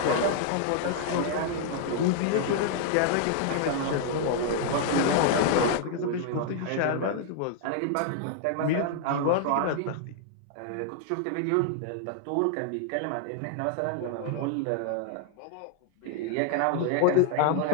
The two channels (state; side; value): different; both; correlation -0.01